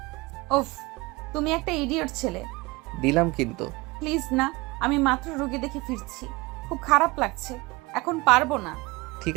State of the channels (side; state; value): left; quieter; 23.3 dB